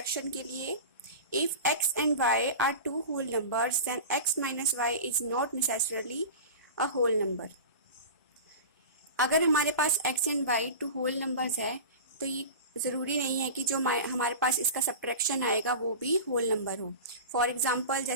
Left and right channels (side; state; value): both; inverted; correlation -0.31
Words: के लिए, if x and y are two whole numbers then x minus y is not necessarily a whole number. अगर हमारे पास x and y two whole numbers है तो ये ज़रूरी नहीं है कि जो हमारे पास इसका सब्ट्रैक्शन आएगा वो भी होल नंबर हो। फॉर एग्जांपल